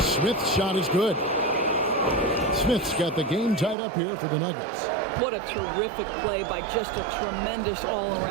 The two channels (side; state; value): left; drops out; at 3.8 s